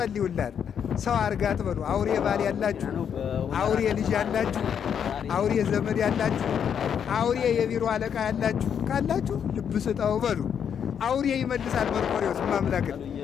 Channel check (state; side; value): quieter; right; 8.0 dB